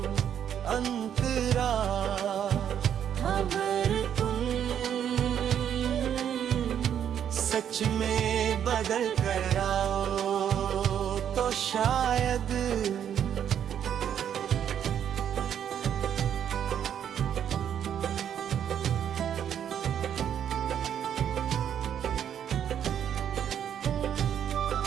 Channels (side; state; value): left; quieter; 9.2 dB